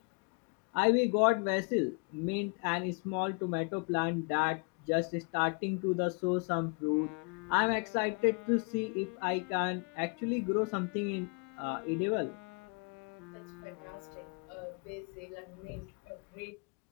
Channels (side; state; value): right; quieter; 35.3 dB